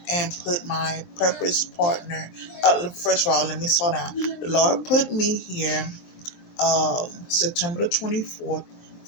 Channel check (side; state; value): right; late; 23 ms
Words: and put my purpose partner. First of all, let me slow down. The Lord put me here September the 24th